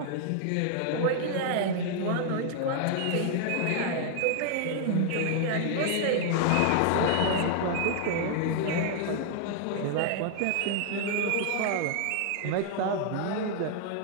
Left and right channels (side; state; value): both; different; correlation 0.00